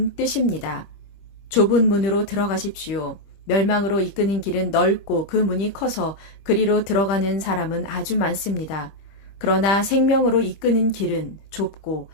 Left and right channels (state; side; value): late; right; 25 ms